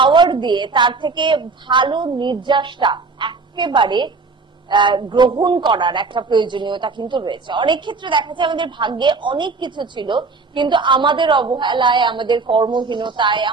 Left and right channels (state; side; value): quieter; left; 4.2 dB